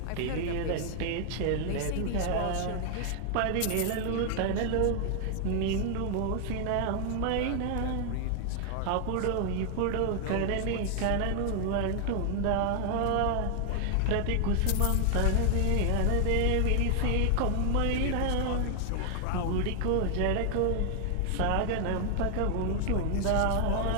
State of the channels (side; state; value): both; different; correlation 0.00